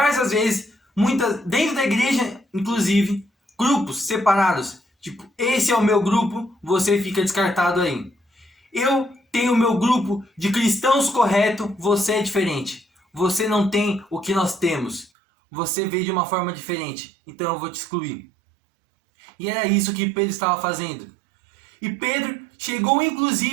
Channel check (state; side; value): drops out; left; at 15.1 s